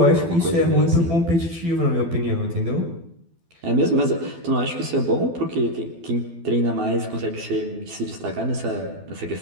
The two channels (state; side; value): late; left; 12 ms